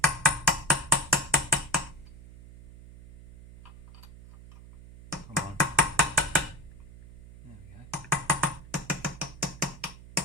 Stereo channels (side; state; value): right; noise; hum, 18 dB below the sound